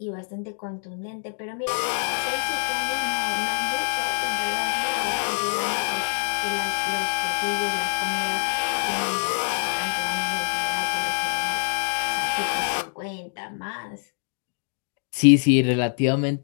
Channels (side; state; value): right; silent; digital silence